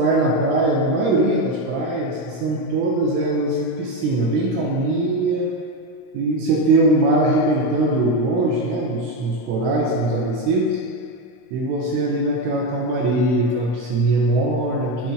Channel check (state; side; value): late; left; 16 ms